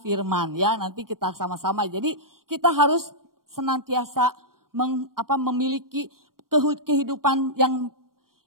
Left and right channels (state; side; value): late; left; 0.92 ms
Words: firman, ya, nanti kita sama-sama. Jadi kita harus senantiasa memiliki kehidupan yang